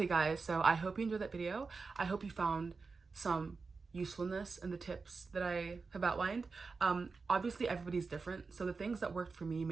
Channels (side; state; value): left; quieter; 4.5 dB